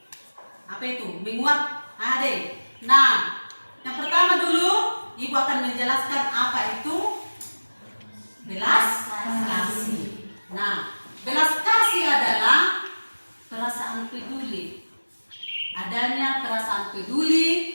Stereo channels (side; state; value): both; inverted; correlation -1.00